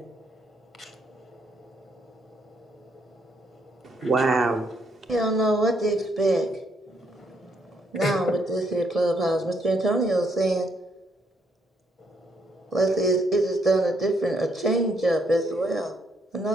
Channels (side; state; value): both; normal; correlation 0.73